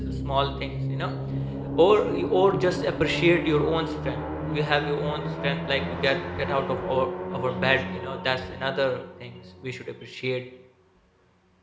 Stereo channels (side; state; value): both; identical; correlation 1.00